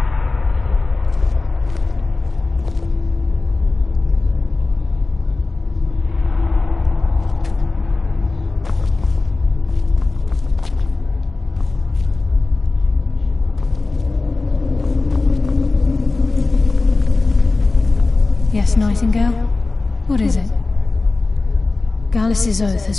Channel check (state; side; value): quieter; right; 3.5 dB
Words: Yes, Nightingale? What is it? Gallus's oath has